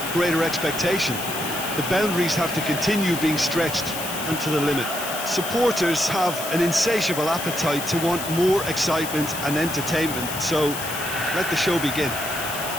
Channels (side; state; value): left; noise; hiss, 7 dB below the sound